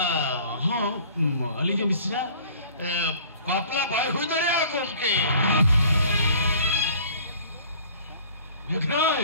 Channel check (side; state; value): both; inverted; correlation -0.50